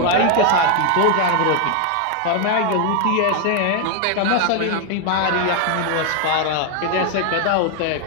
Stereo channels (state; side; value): different; both; correlation 0.00